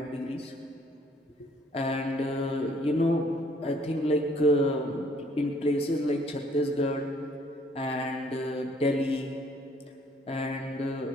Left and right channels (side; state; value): both; normal; correlation 0.62